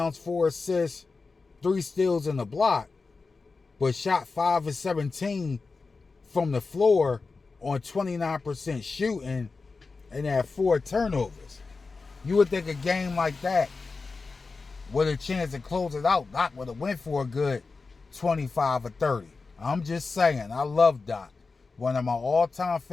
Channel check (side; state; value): right; quieter; 4.2 dB